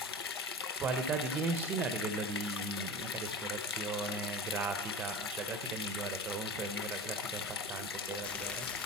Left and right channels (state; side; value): normal; both; correlation 0.31